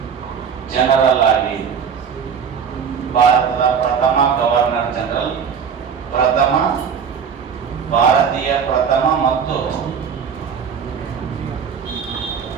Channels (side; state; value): left; quieter; 6.9 dB